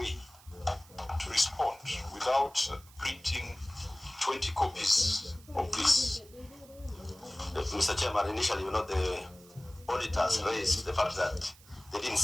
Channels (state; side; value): noise; right; hiss, 24 dB below the sound